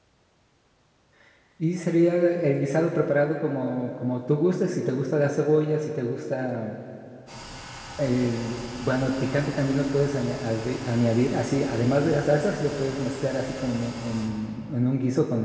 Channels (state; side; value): identical; both; correlation 1.00